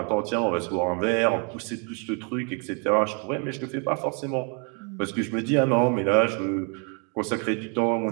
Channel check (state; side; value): quieter; left; 37.3 dB